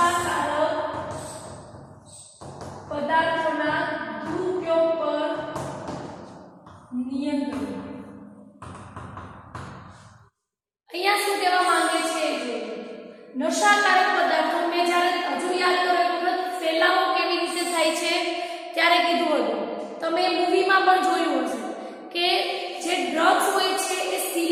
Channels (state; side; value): identical; both; correlation 1.00